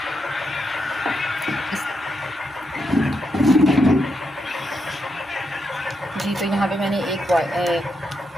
जी, तो यहाँ पे मैंने एक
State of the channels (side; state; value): both; normal; correlation 0.83